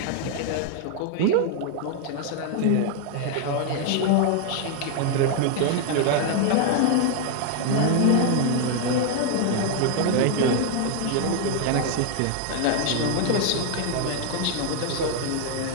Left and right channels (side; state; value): both; different; correlation 0.00